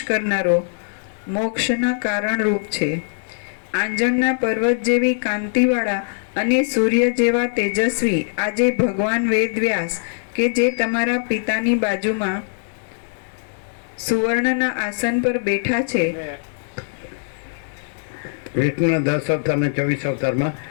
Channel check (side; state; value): right; silent; digital silence